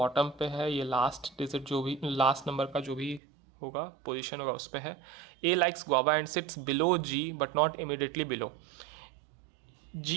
पे है, ये लास्ट डिजिट जो भी, लास्ट नंबर का जो भी होगा, पोजीशन होगा उस पे है। A likes guava and sits below G but not immediately below.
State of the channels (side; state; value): left; drops out; at 3.2 s